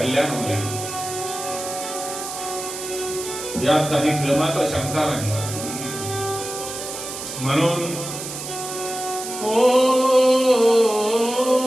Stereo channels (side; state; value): right; noise; hiss, 8 dB below the sound